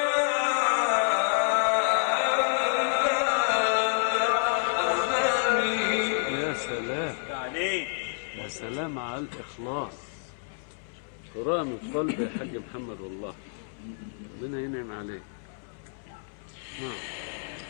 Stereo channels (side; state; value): right; silent; 59 dB below the other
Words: سلام على الإخلاص، قراءة من قلب يا حاج محمد، والله ربنا ينعم عليك. نعم.